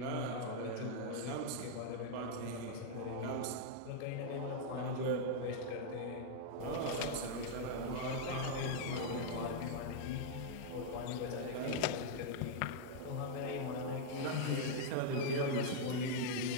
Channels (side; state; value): both; different; correlation -0.01